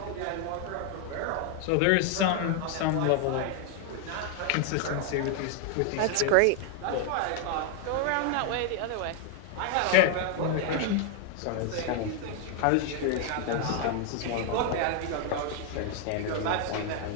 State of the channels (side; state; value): both; different; correlation 0.00